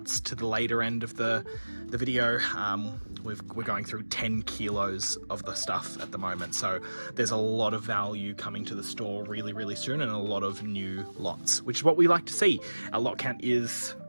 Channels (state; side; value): inverted; both; correlation -1.00